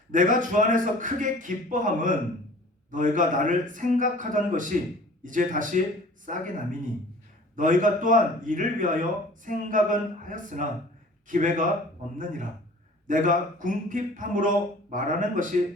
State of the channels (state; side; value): normal; both; correlation 0.47